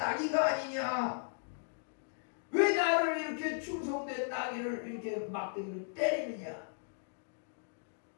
아니냐, 왜 나를 이렇게 충성된 나귀를 이렇게 막대기를 때리느냐.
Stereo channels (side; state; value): right; silent; digital silence